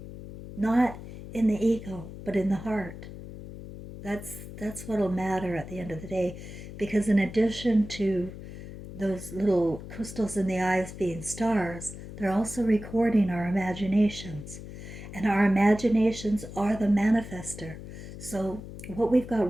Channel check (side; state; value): left; noise; hum, 12 dB below the sound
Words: Not in the ego, but in the heart. That's what'll matter at the end of the day, because in addition to those little crystals in the eyes being stars, they're also recording our imaginations. And our imaginations are the manifester. So what we've